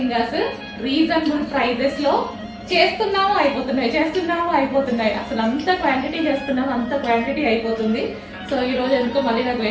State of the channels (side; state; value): both; identical; correlation 1.00